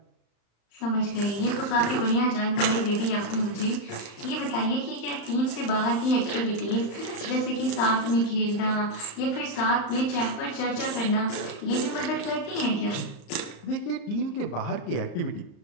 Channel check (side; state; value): right; late; 35 ms